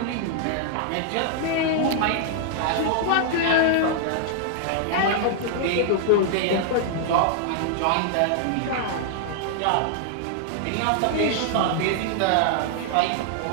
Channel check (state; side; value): different; both; correlation -0.01